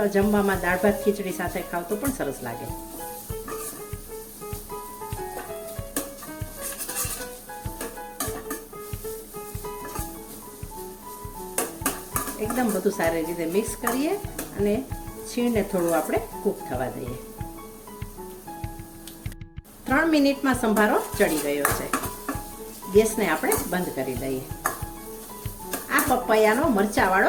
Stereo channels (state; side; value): identical; both; correlation 1.00